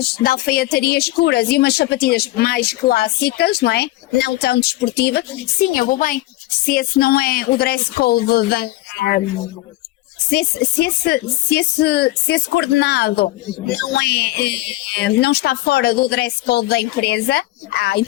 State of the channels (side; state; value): right; quieter; 17.9 dB